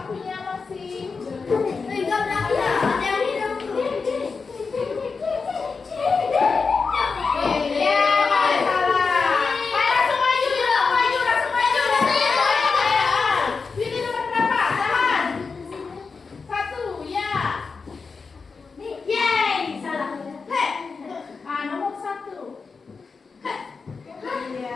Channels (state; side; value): quieter; right; 4.8 dB